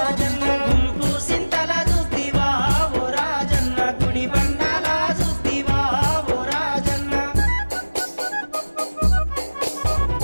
గుంపు సింతల చూద్దివా ఓ రాజన్న గుడి బండాల చూద్దివా ఓ రాజన్న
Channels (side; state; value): both; inverted; correlation -1.00